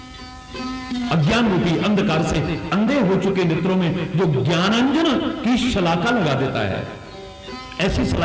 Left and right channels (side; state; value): both; identical; correlation 1.00